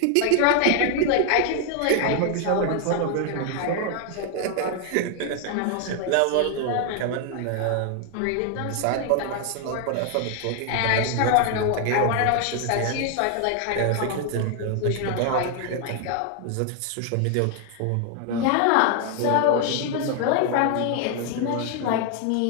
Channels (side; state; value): both; different; correlation 0.00